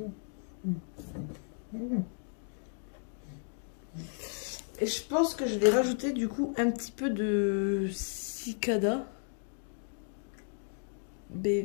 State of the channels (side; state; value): right; silent; 55 dB below the other